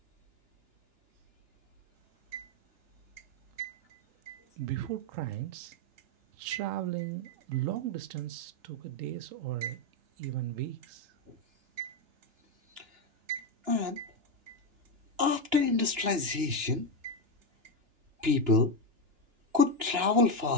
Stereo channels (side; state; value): left; late; 2.9 ms